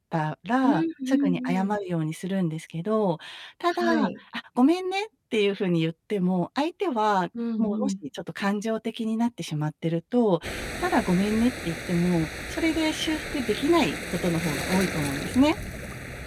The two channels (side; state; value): both; identical; correlation 1.00